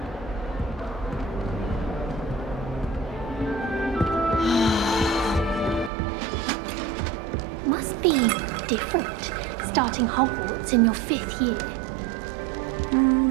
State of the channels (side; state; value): left; drops out; at 5.9 s